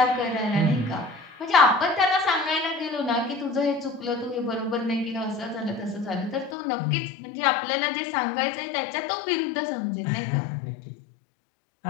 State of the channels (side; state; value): right; drops out; at 6.6 s